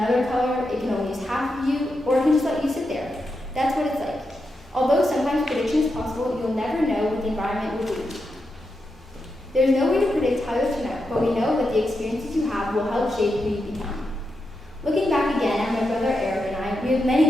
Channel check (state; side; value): normal; both; correlation 0.86